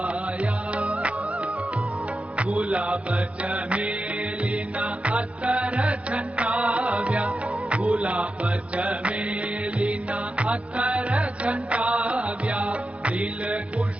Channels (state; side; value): late; left; 0.062 ms